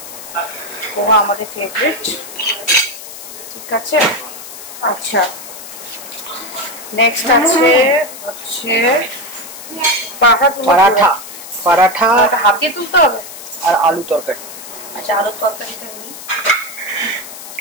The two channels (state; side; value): noise; left; hiss, 13 dB below the sound